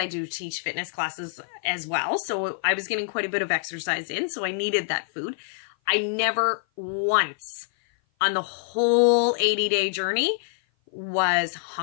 do teach fitness classes as well. So I was getting quite a bit of exercise in. So I needed that food. I never once on the whole 80-day journey was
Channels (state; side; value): silent; right; 56 dB below the other